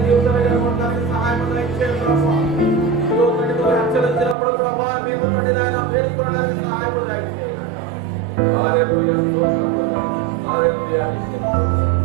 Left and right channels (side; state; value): left; drops out; at 4.4 s